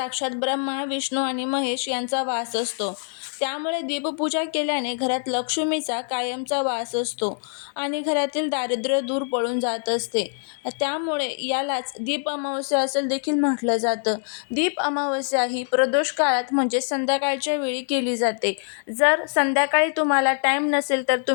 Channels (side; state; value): right; silent; 58 dB below the other